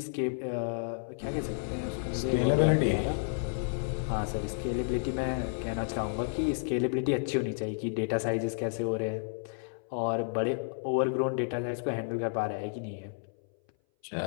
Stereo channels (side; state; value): right; silent; 57 dB below the other